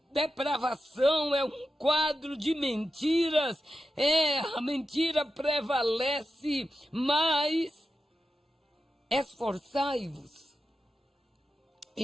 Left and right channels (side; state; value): both; normal; correlation 0.90